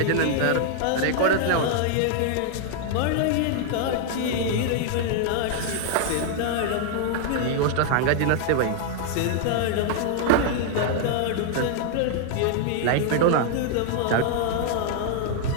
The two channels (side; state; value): both; different; correlation 0.00